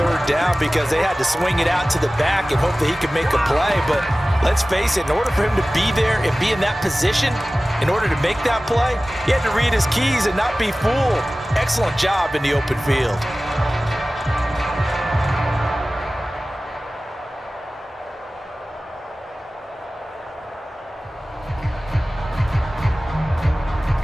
down because they had to swing it out to the back and hope that he could make a play. But let's face it, in order for him to be there and be in that position, in order to make that play, he had to read his keys and not be fooled. Excellent job in the open field.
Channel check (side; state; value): both; normal; correlation 0.97